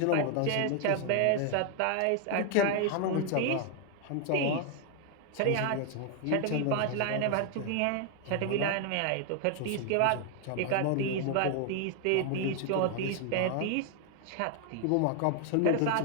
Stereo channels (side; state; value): both; different; correlation 0.00